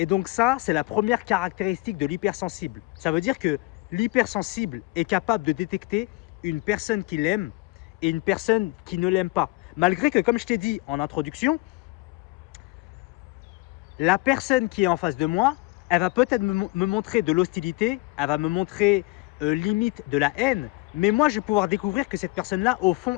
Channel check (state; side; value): quieter; right; 23.2 dB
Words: donc ça, c'est la première caractéristique de l'hypersensible. Ça veut dire que l'hypersensible est capable de détecter une personne qui l'aime et une personne qui ne l'aime pas. Malgré que, comme je t'ai dit en introduction, la personne qui est en face de moi, elle va peut-être me montrer de l'hostilité, elle va me montrer limite de la haine, mais moi, je vais pouvoir découvrir que cette personne-là, au